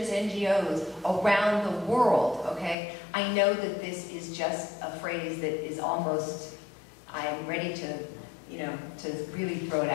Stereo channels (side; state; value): right; drops out; at 2.8 s